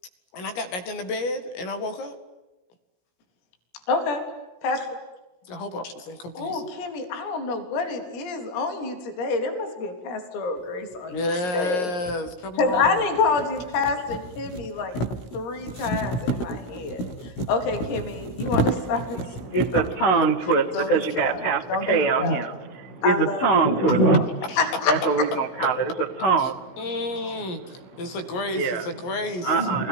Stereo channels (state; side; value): late; right; 17 ms